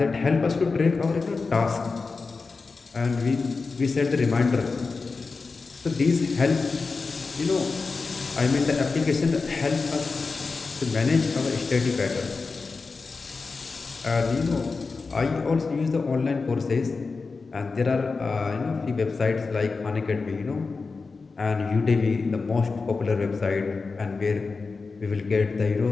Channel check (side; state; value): right; quieter; 4.3 dB